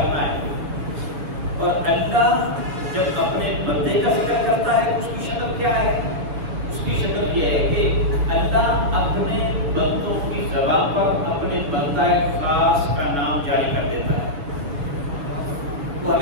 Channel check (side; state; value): left; late; 6.8 ms